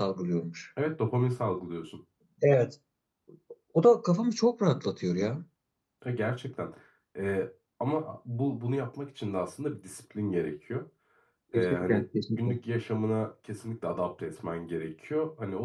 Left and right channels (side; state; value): both; identical; correlation 1.00